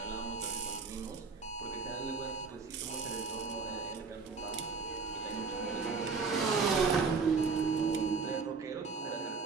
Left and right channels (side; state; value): left; quieter; 4.8 dB